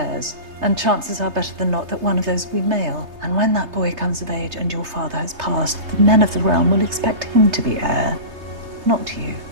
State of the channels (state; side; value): late; left; 3.3 ms